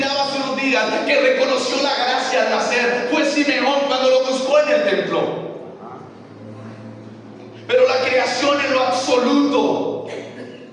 hace unos días que reconoció la gracia al nacer fue Simeón cuando lo buscó en el templo. Pero la creación en lo absoluto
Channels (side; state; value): both; identical; correlation 1.00